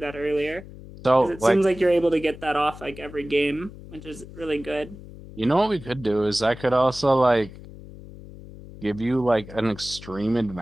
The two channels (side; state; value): left; noise; hum, 16 dB below the sound